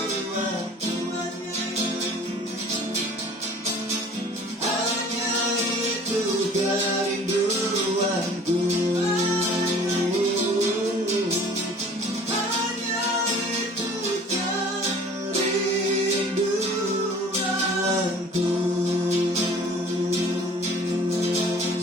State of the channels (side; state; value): both; normal; correlation 0.48